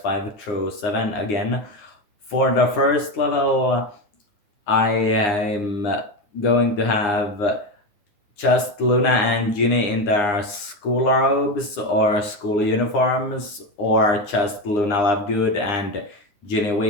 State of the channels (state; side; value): late; right; 9.8 ms